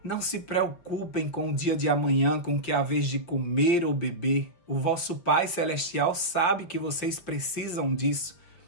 Não se preocupem com o dia de amanhã, com o que há vez de comer ou beber. O vosso Pai Celestial sabe que vocês precisam disso.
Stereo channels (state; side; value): late; right; 5.7 ms